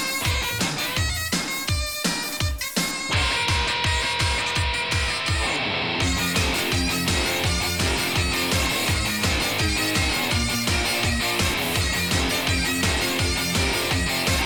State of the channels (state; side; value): identical; both; correlation 1.00